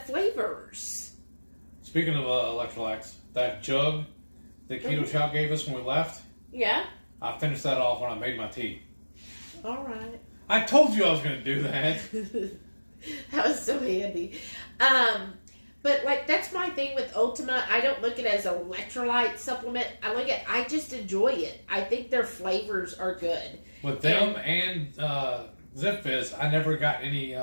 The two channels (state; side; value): inverted; both; correlation -1.00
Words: Speaking of electrolytes, that jug that Keto Chow gave us when we left, Yeah. I finished that off when I made my tea. All right. I told you I was going to do that. That was so handy. But like that's my thing with Ultima. I don't look at it as an electrolyte supplement. I just enjoy it. I think their flavors are good. With them and Zip Fizz, I never got any